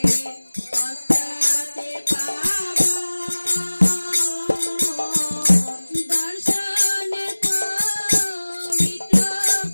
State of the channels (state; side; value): inverted; both; correlation -1.00